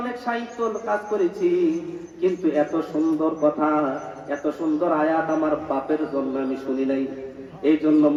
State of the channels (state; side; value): identical; both; correlation 1.00